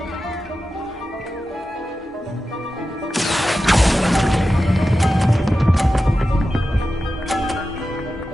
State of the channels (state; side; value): normal; both; correlation 0.92